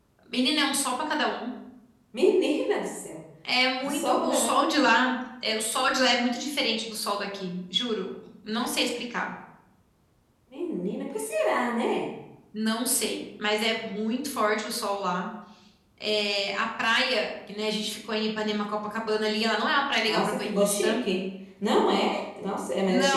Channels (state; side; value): identical; both; correlation 1.00